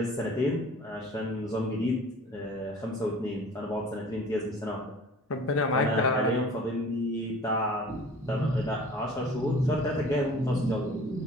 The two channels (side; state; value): both; normal; correlation 0.46